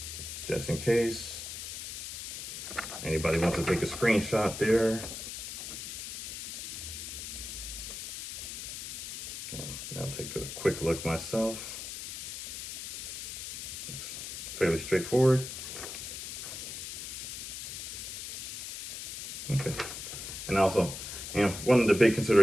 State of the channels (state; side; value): noise; left; hiss, 7 dB below the sound